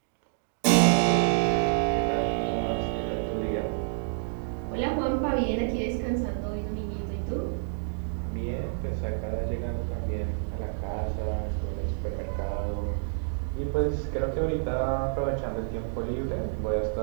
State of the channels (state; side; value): silent; left; digital silence